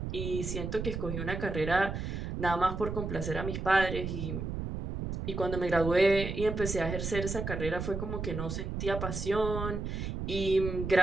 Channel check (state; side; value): noise; right; rumble, 4 dB below the sound